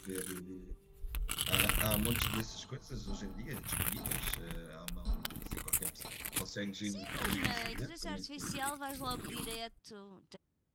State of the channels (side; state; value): both; identical; correlation 1.00